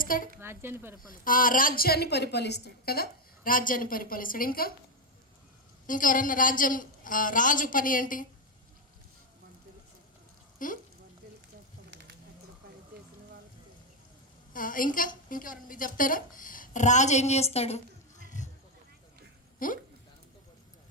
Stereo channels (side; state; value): both; normal; correlation 0.05